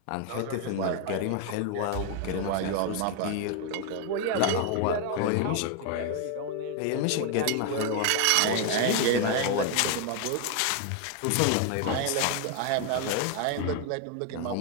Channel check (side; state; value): both; different; correlation 0.01